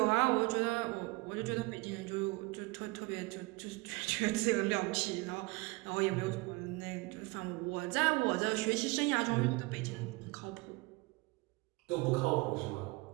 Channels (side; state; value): left; quieter; 24.6 dB